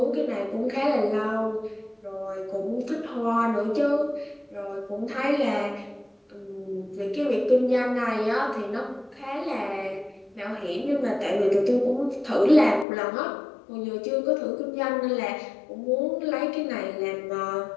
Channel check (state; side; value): drops out; right; at 12.9 s